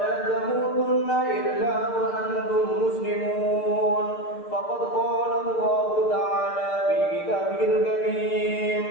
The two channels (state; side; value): late; right; 6.6 ms